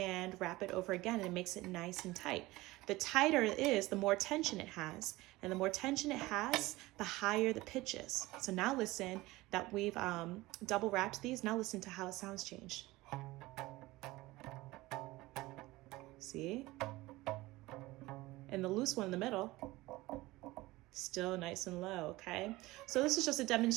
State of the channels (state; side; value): quieter; left; 19.5 dB